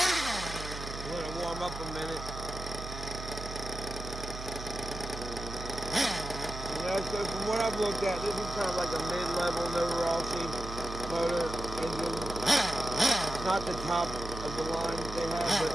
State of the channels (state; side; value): noise; right; hum, 9 dB below the sound